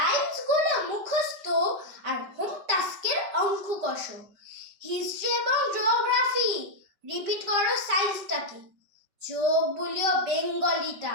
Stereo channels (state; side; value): late; left; 5.2 ms